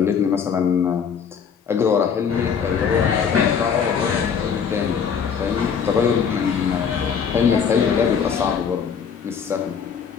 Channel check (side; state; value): right; quieter; 6.9 dB